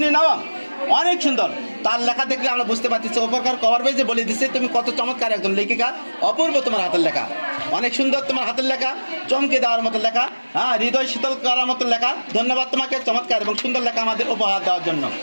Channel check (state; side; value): inverted; both; correlation -1.00